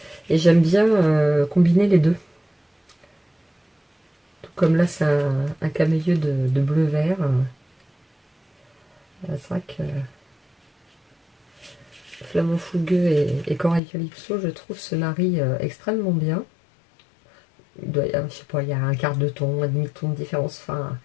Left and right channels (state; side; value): drops out; right; at 13.8 s